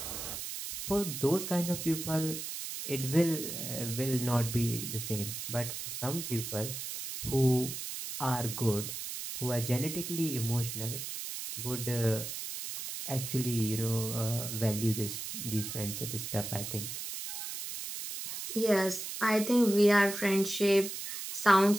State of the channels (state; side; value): noise; right; hiss, 6 dB below the sound